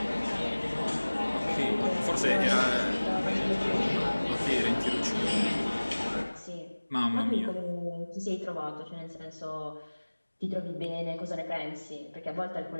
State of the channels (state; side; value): inverted; both; correlation -1.00